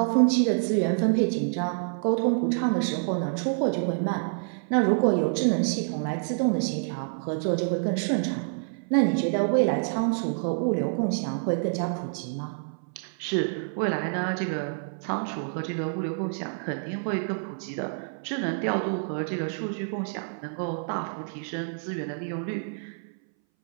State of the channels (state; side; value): silent; left; 60 dB below the other